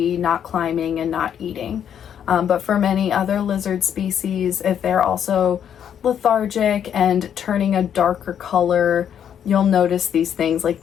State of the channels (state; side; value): quieter; right; 9.0 dB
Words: not climbing, and not eating. But for many other lizard species, if they're also lethargic and turning a darker color, you'll notice these things like